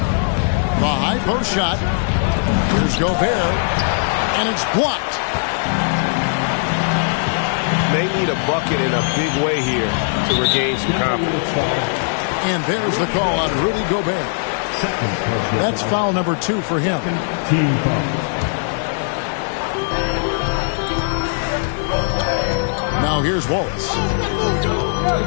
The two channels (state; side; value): silent; right; digital silence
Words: high post shot. Here's Gobert. And it's blocked. They need a bucket in a big way here to regain some confidence. And there's the call on Rudy Gobert. That's foul number 2 for him. Now here's Wallace.